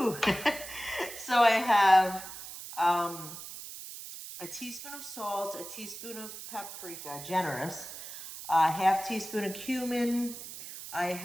So I have a teaspoon of salt, a teaspoon of paprika, generous, a half teaspoon of cumin. I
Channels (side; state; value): right; noise; hiss, 11 dB below the sound